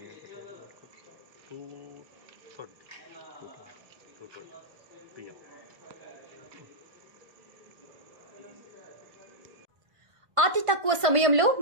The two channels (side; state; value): left; late; 1.4 ms